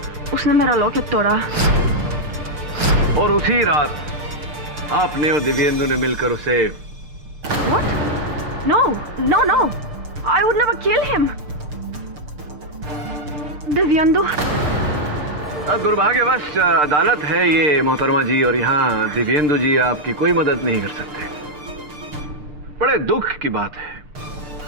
उसने मेरा लॉकेट तोड़ा। और उसी रात आपने और दिव्येंदु ने मिलकर उसे What? No, no, no. I would never kill him. Dibyendu. दुर्भाग्यवश अदालत है ये मोहतरमा जी, और यहाँ दिव्येंदु जी आपकी कोई मदद नहीं कर सकते। बड़े दुख की बात है।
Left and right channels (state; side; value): late; left; 6.7 ms